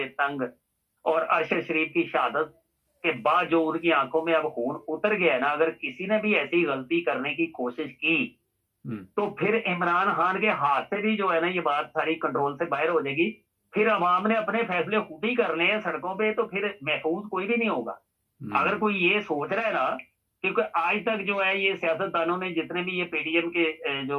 तंग, और अरशद शरीफ की शहादत के बाद जो उनकी आंखों में अब खून उतर गया है ना, अगर किसी ने भी ऐसी गलती करने की कोशिश की तो फिर इमरान खान के हाथ से भी जो है ना ये बात सारी कंट्रोल से बाहर हो जाएगी। फिर अवाम ने अपने फैसले खुद ही करने हैं सड़कों पे, तो फिर महफूज कोई भी नहीं होगा। अगर कोई ये सोच रहा है ना, क्योंकि आज तक जो है ये सियासतदानों ने, जितने भी ये पीडीएम के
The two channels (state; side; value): identical; both; correlation 1.00